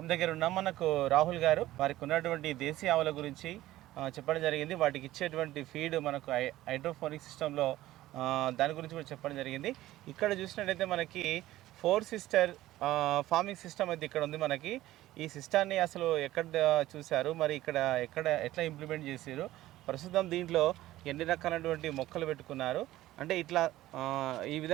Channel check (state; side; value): quieter; left; 15.6 dB